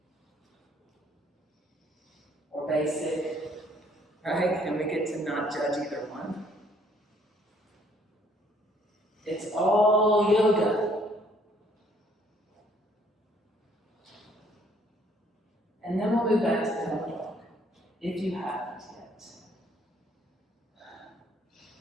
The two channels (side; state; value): both; normal; correlation 0.63